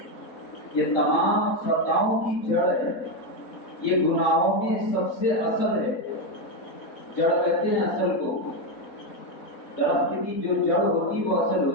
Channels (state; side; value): late; right; 4.0 ms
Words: یہ تمام خطاؤں کی جڑ ہے، یہ گناہوں میں سب سے اصل ہے. جڑ کہتے ہیں اصل کو، درخت کی جو جڑ ہوتی وہ اصل